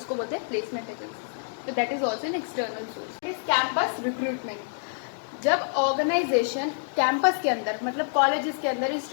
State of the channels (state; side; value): silent; right; digital silence